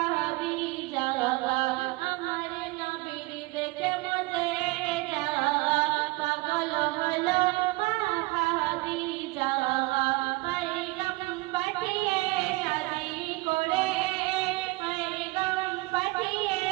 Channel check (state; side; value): quieter; left; 23.4 dB